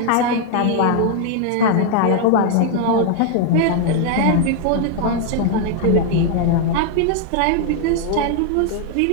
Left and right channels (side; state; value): both; different; correlation 0.00